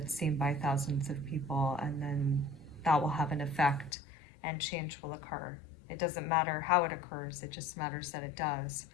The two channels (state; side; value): drops out; right; at 4.0 s